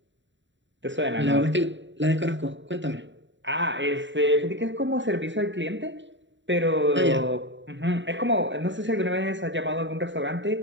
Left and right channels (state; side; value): late; left; 0.54 ms